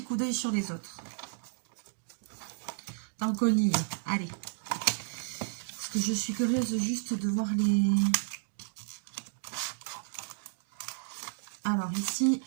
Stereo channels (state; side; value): silent; left; digital silence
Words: coup d'œil sur les autres. Tant qu'on y est. Allez. Parce que je suis curieuse juste de voir les... Alors ici,